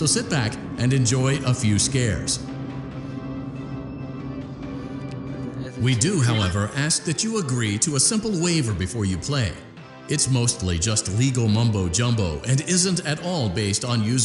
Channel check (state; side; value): identical; both; correlation 1.00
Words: sit back and enjoy a few scares. We do, however, ask that you agree to a simple waiver before you play. It's mostly just legal mumbo-jumbo and isn't at all based on